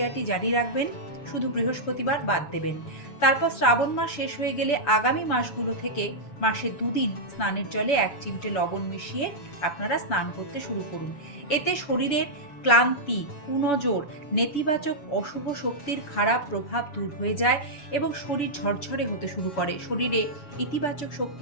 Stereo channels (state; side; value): late; right; 6.9 ms